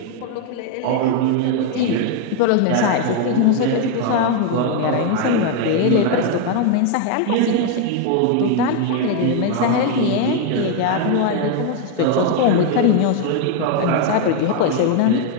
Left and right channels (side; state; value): both; different; correlation 0.01